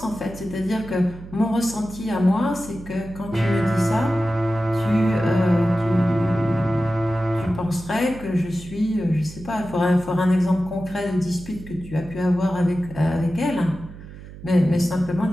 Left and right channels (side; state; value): right; noise; hum, 15 dB below the sound